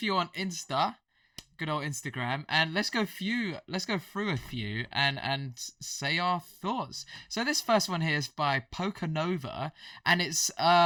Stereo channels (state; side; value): identical; both; correlation 1.00